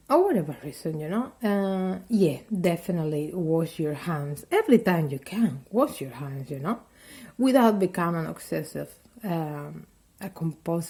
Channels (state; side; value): identical; both; correlation 1.00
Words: Or whatever reason, you know. Yeah, definitely wash your hands every time you can. Wash your hands, you know, without becoming obsessive, a